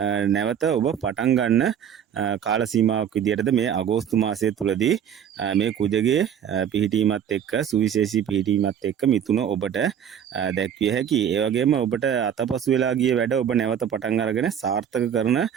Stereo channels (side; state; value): left; quieter; 8.8 dB